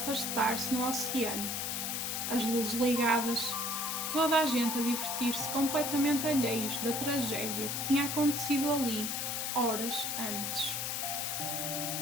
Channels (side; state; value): left; noise; hiss, 1 dB below the sound